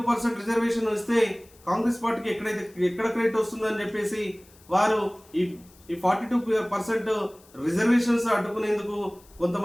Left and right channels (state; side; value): noise; left; hiss, 27 dB below the sound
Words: రిజర్వేషన్ ఇస్తే కాంగ్రెస్ పార్టీకి ఎక్కడ క్రెడిట్ వస్తుందని చెప్పేసి వారు ఈ 42% రిజర్వేషన్స్ అడ్డుకునేందుకు